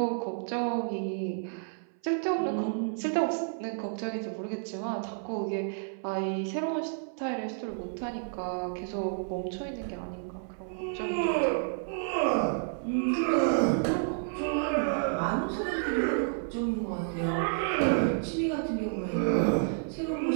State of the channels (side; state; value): left; silent; 57 dB below the other